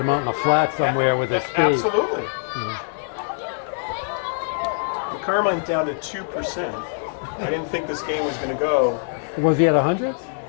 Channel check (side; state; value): right; silent; digital silence